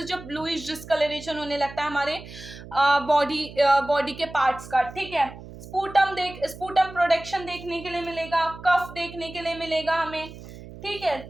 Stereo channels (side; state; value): right; noise; hum, 15 dB below the sound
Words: जब ब्लूइश डिस्कलरेशन होने लगता है हमारे बॉडी के पार्ट्स का, ठीक है। स्पूटम प्रोडक्शन देखने के लिए मिलेगा, कफ देखने के लिए मिलेगा हमें, ठीक है।